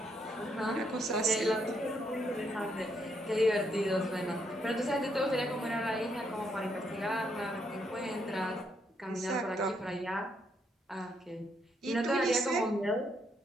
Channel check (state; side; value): normal; both; correlation 0.75